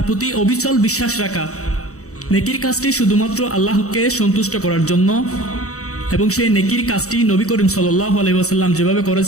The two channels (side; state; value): right; late; 0.65 ms